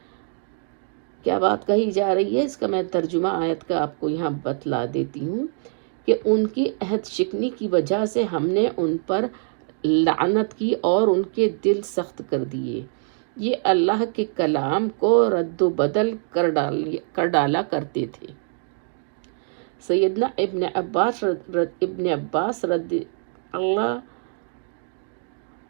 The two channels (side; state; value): left; silent; 62 dB below the other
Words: کیا بات کہی جا رہی ہے؟ اس کا میں ترجمہ آیت کا آپ کو یہاں بتلا دیتی ہوں کہ ان کی عہد شکنی کی وجہ سے ہم نے ان پر لعنت کی اور ان کے دل سخت کر دیے، یہ اللہ کے کلام کو رد و بدل کر ڈالا کرتے تھے۔ سیدنا ابن عباس رضی اللہ